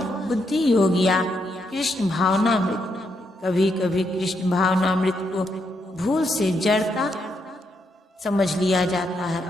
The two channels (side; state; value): both; normal; correlation 0.79